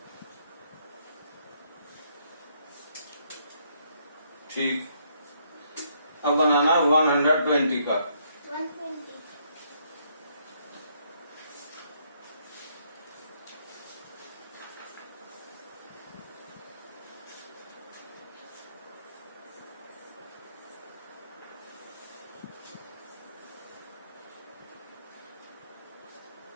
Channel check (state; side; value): inverted; both; correlation -0.71